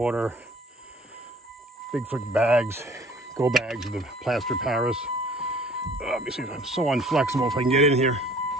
Bigfoot bags, go bags with the plaster Paris. Let me see if I'm so unflexible if I can get in here.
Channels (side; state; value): both; normal; correlation 0.52